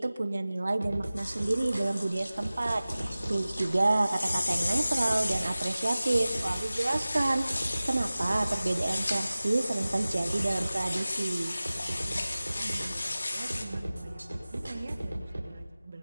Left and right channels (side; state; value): both; inverted; correlation -0.97